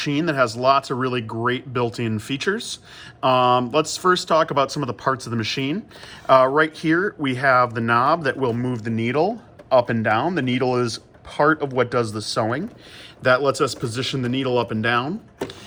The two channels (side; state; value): both; identical; correlation 1.00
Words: that has lots of really great built-in features. Let's first talk about some of the parts of the machine. Right here we have the knob that will move the needle up and down. The needle is part of what does the sewing. That lets us position the needle up and down.